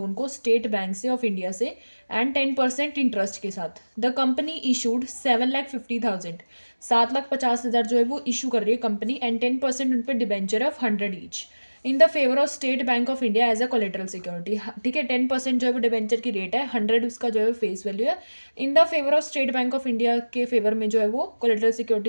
को स्टेट बैंक से ऑफ इंडिया से एंड 10% इंटरेस्ट के साथ। द कंपनी इशूड 7,50,000, 7,50,000 जो है वो इशू कर रही है कंपनी एंड 10% उन पर debenture of 100 each in the favour of State Bank of India as a collateral security. ठीक है, 10% जो है वो डिबेंचर की रेट है, 100 उसका जो है फेस वैल्यू है। इन the favour of State Bank of India के फेवर में जो है वो कोलेटरल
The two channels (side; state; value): both; inverted; correlation -1.00